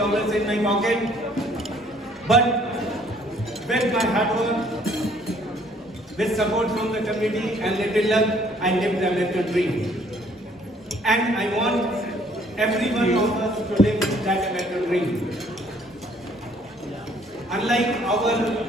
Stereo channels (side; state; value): both; normal; correlation 0.61